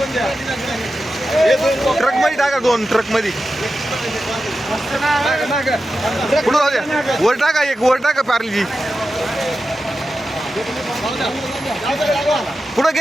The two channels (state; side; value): normal; both; correlation 0.92